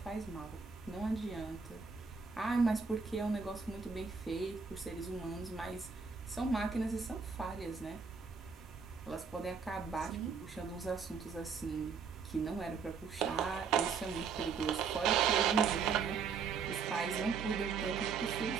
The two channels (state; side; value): quieter; left; 5.6 dB